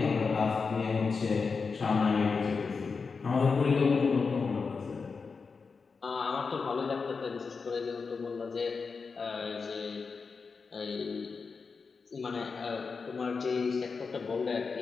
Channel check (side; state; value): right; quieter; 4.9 dB